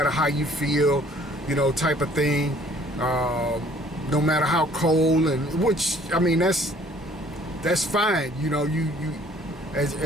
how you feel, type of thing, no matter how cold, and which, that's fine. You as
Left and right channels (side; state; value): both; normal; correlation 0.57